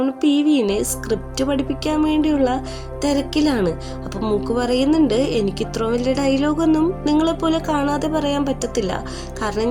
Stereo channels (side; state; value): both; identical; correlation 1.00